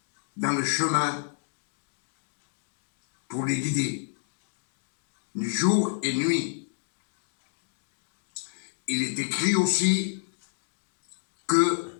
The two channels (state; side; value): silent; right; 58 dB below the other